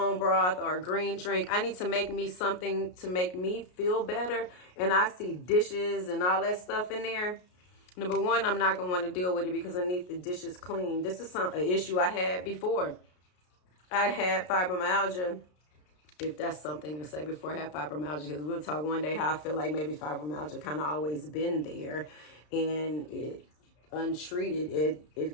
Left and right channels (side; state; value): right; late; 33 ms